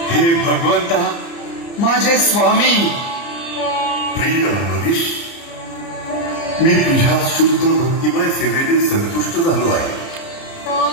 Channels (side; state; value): right; late; 30 ms